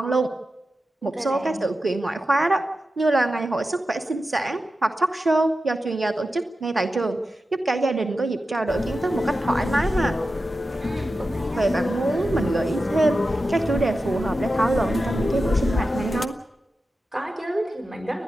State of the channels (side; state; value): both; normal; correlation 0.92